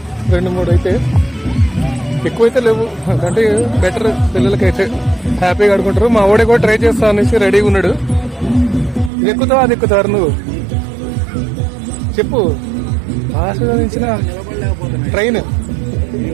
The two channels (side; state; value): left; drops out; at 9.1 s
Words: 2-3 అయితే, ఎక్కువైతే లేవు. అంటే బెటర్. పిల్లలకైతే హ్యాపీగా ఆడుకుంటారు. మా వాడే కూడా ట్రై చేస్తా అనేసి రెడీగా ఉన్నాడు. ఇది ఎక్కుతావా అది ఎక్కుతారు నువ్వు చెప్పు. ఆస్వాదించిన ట్రైన్